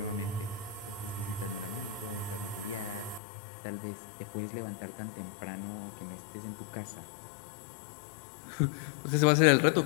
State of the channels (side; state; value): right; drops out; at 3.2 s